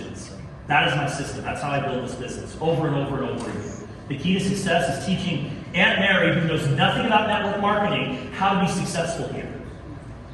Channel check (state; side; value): identical; both; correlation 1.00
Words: That is my system. That's how I build this business, over and over and over again. The key to success is teaching Aunt Mary, who knows nothing about network marketing, how to be successful here.